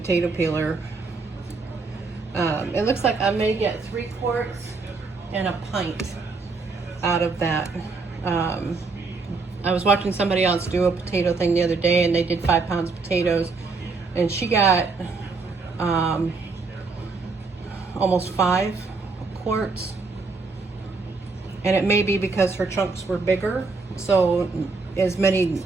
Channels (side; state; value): left; quieter; 4.1 dB